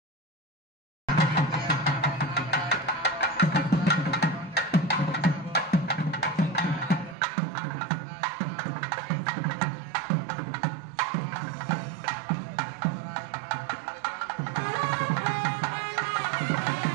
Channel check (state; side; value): drops out; left; at 7.2 s